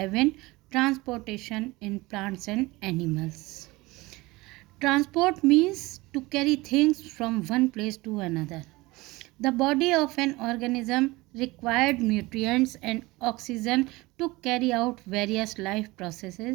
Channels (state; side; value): quieter; left; 21.4 dB